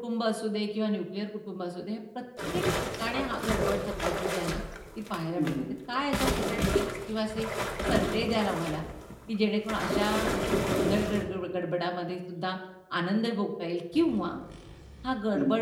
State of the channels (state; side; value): identical; both; correlation 1.00